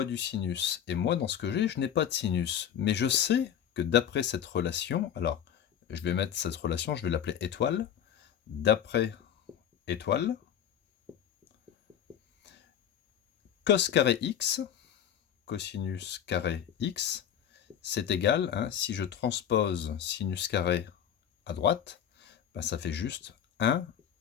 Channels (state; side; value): quieter; right; 9.4 dB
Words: du sinus. Et moi, dans ce que j'ai, je n'ai pas de sinus. Mais je sais que d'après cette relation, alors je vais mettre cette relation, je vais l'appeler étoile. D'après étoile, cos carré x, cosinus carré x, c'est égal, si je transpose sinus carré à droite, ben ça fait juste 1